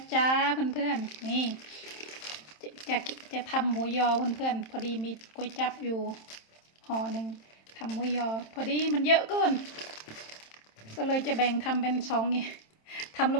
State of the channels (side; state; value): right; late; 27 ms